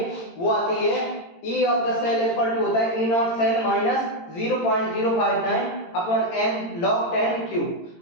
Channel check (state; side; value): late; right; 18 ms